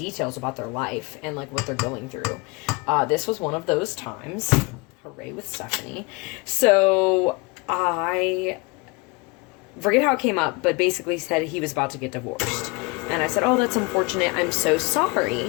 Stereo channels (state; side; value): quieter; right; 27.2 dB